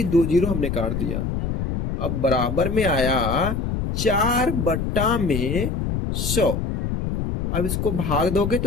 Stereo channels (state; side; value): noise; left; rumble, 2 dB below the sound